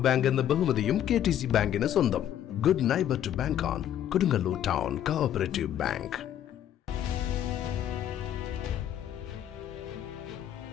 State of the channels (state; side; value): quieter; right; 10.7 dB